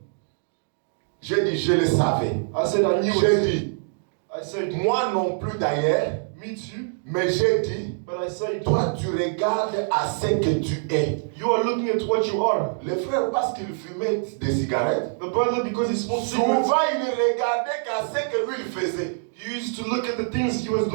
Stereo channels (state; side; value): silent; left; digital silence